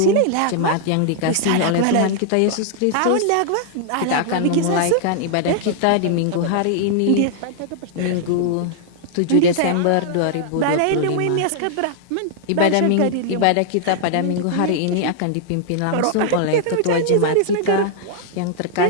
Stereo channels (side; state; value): both; different; correlation -0.01